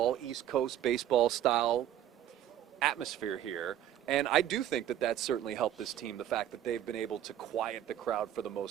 East Coast baseball style atmosphere here. And I do think that that's certainly helped this team, the fact that they've been able to quiet the crowd for the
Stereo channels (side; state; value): left; quieter; 11.4 dB